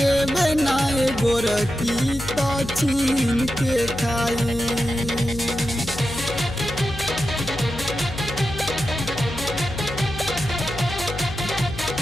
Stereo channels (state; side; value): noise; left; hum, 10 dB below the sound